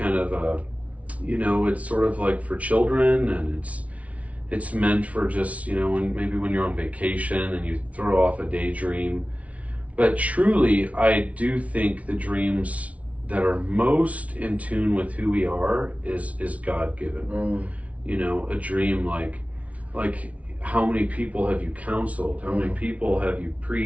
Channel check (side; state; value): left; late; 0.066 ms